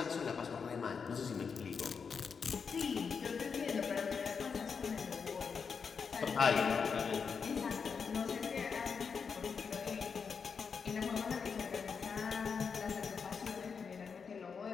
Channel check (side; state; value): right; quieter; 5.9 dB